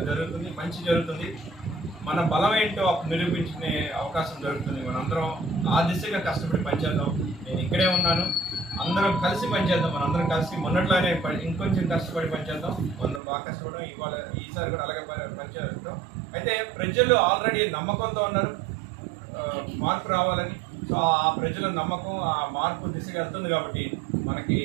మంచి జరుగుతుంది. మన బలం ఏంటో నిరూపించుకునే అవకాశం దొరుకుతుంది. మనందరం ఆ దిశగా కష్టపడి పనిచేద్దాం. నేను ఇక్కడే ఉన్నాను, అందరం కలిసి పనిచేద్దాం. మనందరం కలిసి మొన్నట్లానే ఇంకొంచెం కష్టపడి పనిచేద్దాం. మనం బాగా కష్టపడడం ఈసారి కూడా అలాగే పనిచేద్దాం. అయితే ప్రజలు ఆల్రెడీ నమ్మకంతో ఉన్నారు మార్పు రావాలని. సో ఆ ప్రజల నమ్మకం ఆ మార్పు దిశగా వెళ్తుంది కాబట్టి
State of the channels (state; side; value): drops out; left; at 13.2 s